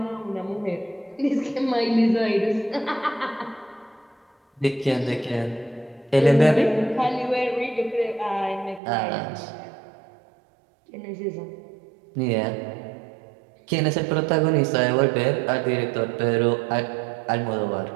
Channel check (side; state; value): left; drops out; at 8.8 s